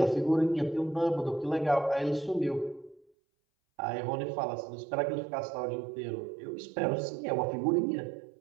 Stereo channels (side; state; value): left; drops out; at 3.1 s